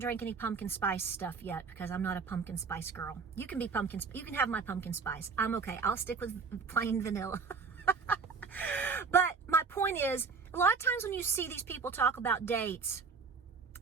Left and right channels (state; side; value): quieter; left; 5.1 dB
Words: any pumpkin spice stuff yet because I'm not a pumpkin spice girl. You can be you can have my pumpkin spice. I'm okay. I'll stick with plain vanilla. But my point is, a lot of times when you see these people talk about dates,